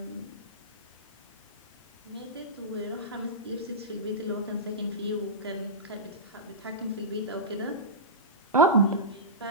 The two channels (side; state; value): both; normal; correlation -0.16